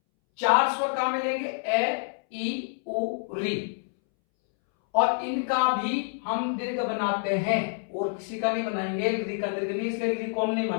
4 स्वर कहां मिलेंगे, ए, ई, उ, री, और इनका भी हम दीर्घ बनाते हैं और किसी का नहीं बनाएंगे, री का दीर्घ नहीं, इसलिए री को हम नहीं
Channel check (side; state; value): right; silent; 60 dB below the other